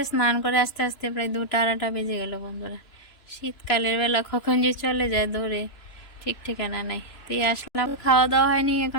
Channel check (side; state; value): right; late; 2.9 ms